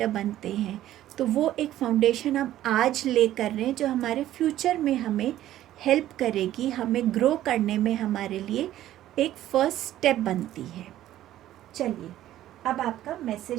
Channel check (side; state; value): left; quieter; 13.3 dB